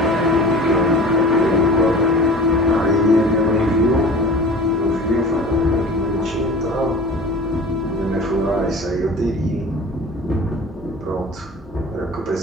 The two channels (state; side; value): normal; both; correlation 0.40